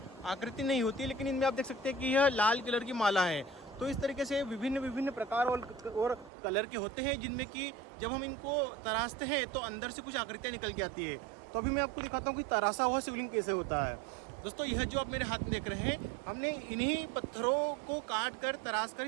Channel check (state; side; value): drops out; left; at 6.3 s